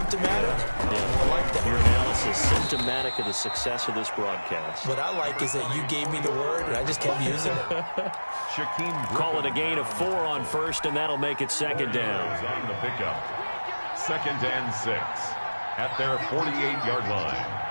Yeah. I like that. Your analysis, symptomatic of the success of this broadcast. What I like is that you gave me the word, and I just kept using it. Call it a gain of 4 on 1st, and that'll make it 2nd down. On the pickup. 2nd and 6 at their 48-yard line.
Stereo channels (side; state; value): both; inverted; correlation -1.00